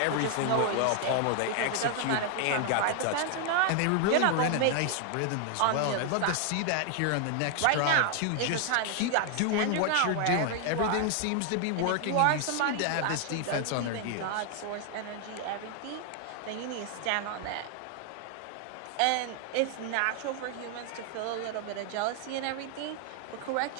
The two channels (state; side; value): different; both; correlation 0.00